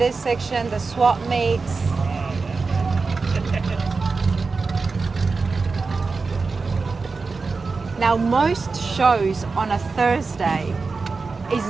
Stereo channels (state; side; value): quieter; left; 4.3 dB